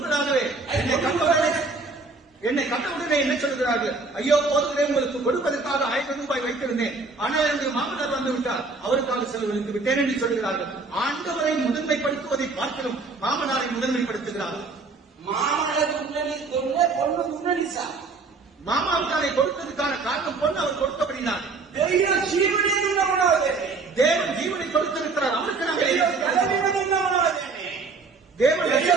என்னை கண்டவுடனே என்ன சொல்கிறார்கள்? ஐயோ போதவரே உங்களுக்கு கொடுப்பதற்காக 1000 ரூபாய் வைத்திருந்தேன், ஆனால் என்னுடைய மாமனார் வந்து விட்டார், அவருக்காக செலவழித்து விட்டேன் என்று சொல்கிறார்கள். ஆண்டவரை முதன்மைப்படுத்துவதை பார்க்கணும் மாமனாரை முதன்மைப்படுத்துகிறார்கள். மாமாவுக்காரை கொடுத்ததுக்கான காரணம் பொண்ணு அவர் கொடுத்தபடினார். தேவன் ஜீவனை கொடுத்திருக்கிறார், அவருக்கு நாங்கள்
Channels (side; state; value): left; quieter; 4.0 dB